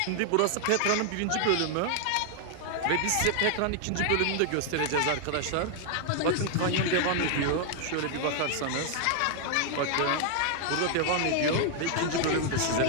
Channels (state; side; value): different; both; correlation 0.00